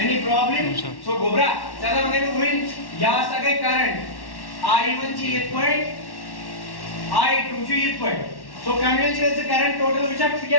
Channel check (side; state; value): right; late; 1.1 ms